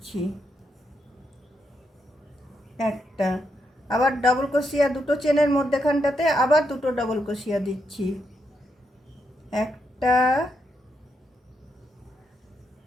একটা। আবার ডবল ক্রোশিয়া দুটো চেনের মধ্যেখানটাতে আবার দুটো ডবল ক্রোশিয়া দিচ্ছি, একটা,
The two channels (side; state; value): both; normal; correlation 0.81